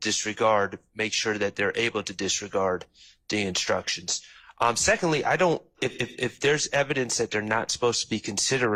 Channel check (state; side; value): identical; both; correlation 1.00